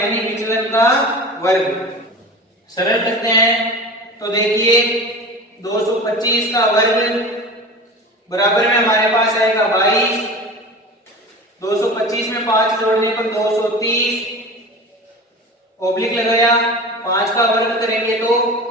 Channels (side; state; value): both; normal; correlation 0.34